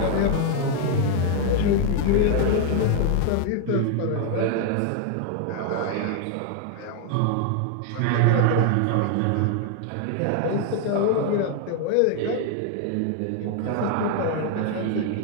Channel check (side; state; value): both; different; correlation 0.00